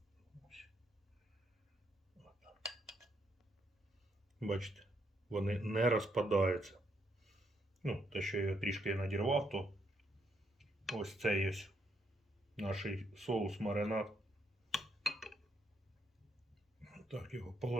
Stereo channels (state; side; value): normal; both; correlation 0.75